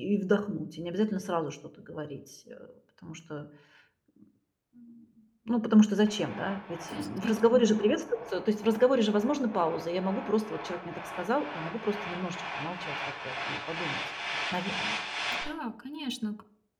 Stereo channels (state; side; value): identical; both; correlation 1.00